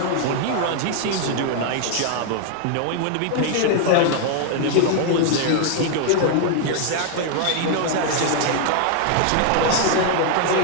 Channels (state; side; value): different; both; correlation 0.00